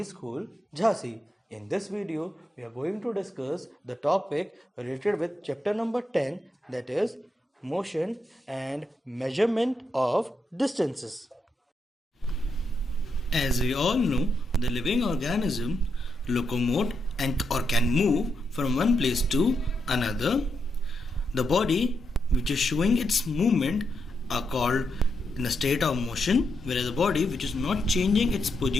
School, Jhansi. In this video, we are going to discuss the topic related with chapter number 10, that is motion and measurement of distances. As we all know, the living organism locomote and or can move from one place to another. The body which is showing its movement are called in a state of motion, whereas the body which is not changing its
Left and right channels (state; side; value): normal; both; correlation 0.82